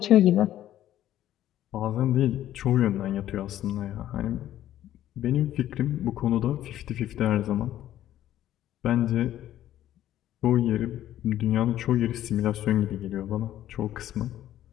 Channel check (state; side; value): quieter; right; 12.6 dB